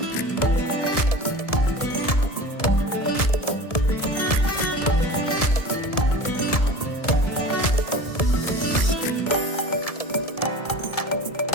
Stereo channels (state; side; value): late; right; 1.7 ms